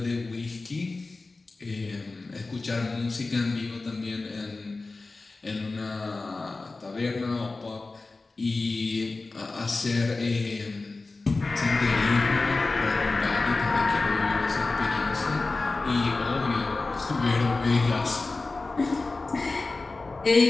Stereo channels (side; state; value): right; quieter; 3.5 dB